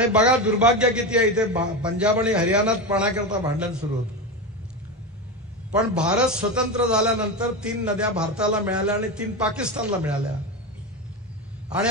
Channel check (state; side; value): normal; both; correlation 0.19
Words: बघा दुर्भाग्य किती आहे, इथे पंजाब आणि हरियाणात पाण्याकरता भांडण सुरू होतं. पण भारत स्वतंत्र झाल्यानंतर 3 नद्या भारताला मिळाल्या आणि 3 पाकिस्तानला मिळाल्या. आणि